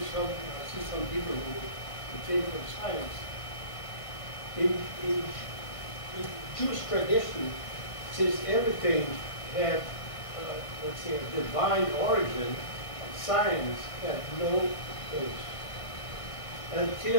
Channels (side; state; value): right; late; 1.5 ms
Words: I see some people who came from science. In Jewish tradition, since everything had, let's say, a divine origin, science had no place.